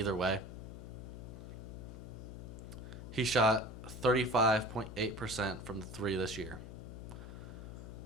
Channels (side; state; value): left; noise; hum, 10 dB below the sound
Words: way. He shot 35.8% from the three this year.